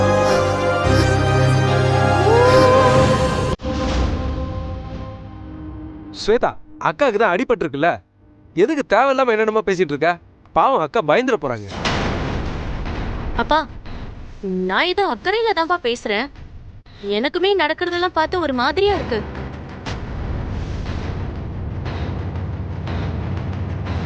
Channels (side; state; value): both; identical; correlation 1.00